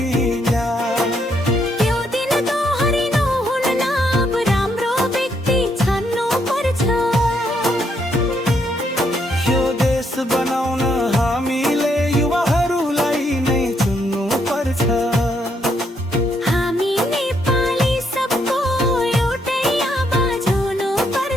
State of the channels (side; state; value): both; normal; correlation 0.75